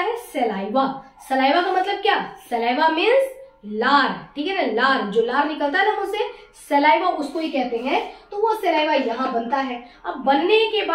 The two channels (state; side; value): identical; both; correlation 1.00